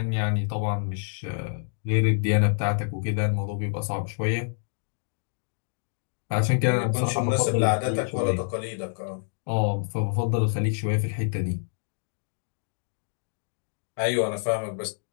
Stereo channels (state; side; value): silent; right; digital silence